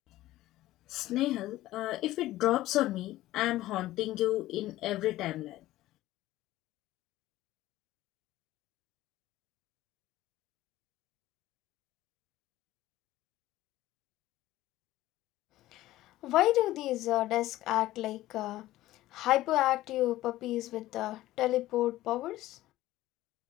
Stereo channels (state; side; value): quieter; right; 15.8 dB